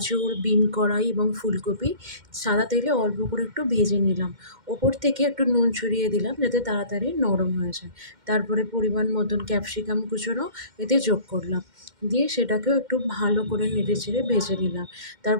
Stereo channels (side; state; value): left; late; 2.1 ms